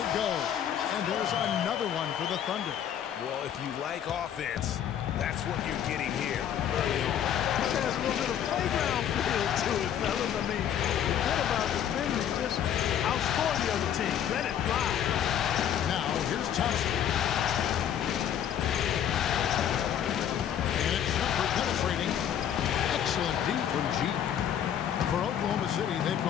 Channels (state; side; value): quieter; right; 9.7 dB